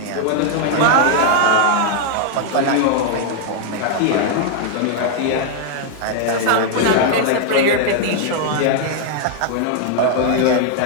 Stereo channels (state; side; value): different; both; correlation 0.00